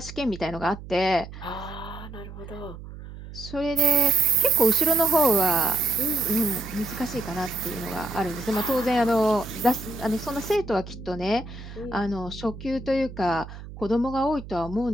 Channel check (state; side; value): noise; right; hum, 13 dB below the sound